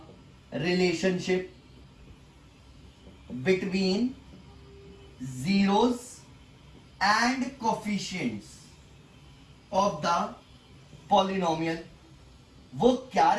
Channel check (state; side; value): identical; both; correlation 1.00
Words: relationship between zeros and coefficients of the polynomial। वो क्या